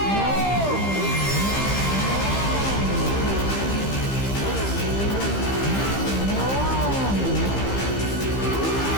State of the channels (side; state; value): right; late; 15 ms